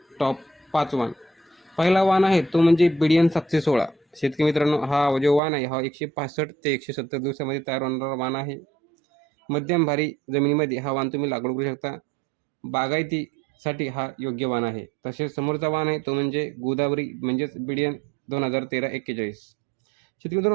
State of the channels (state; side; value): drops out; left; at 5.4 s